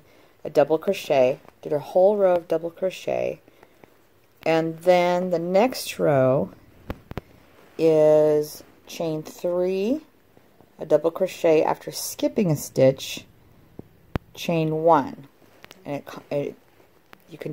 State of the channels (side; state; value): both; identical; correlation 1.00